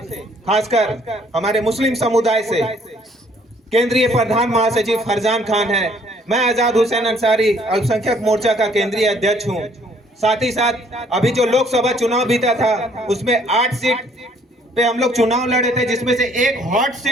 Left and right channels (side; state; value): both; normal; correlation 0.62